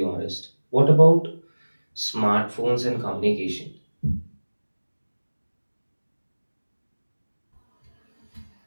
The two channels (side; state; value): both; inverted; correlation -1.00